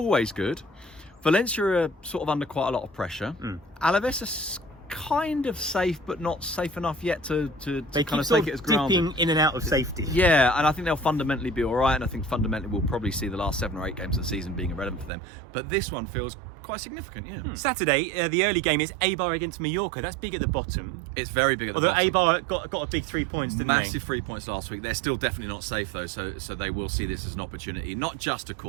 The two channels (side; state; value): left; drops out; at 15.1 s